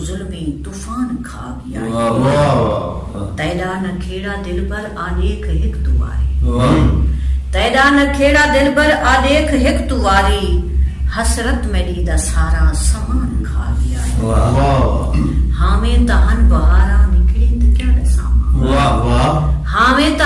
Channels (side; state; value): both; identical; correlation 1.00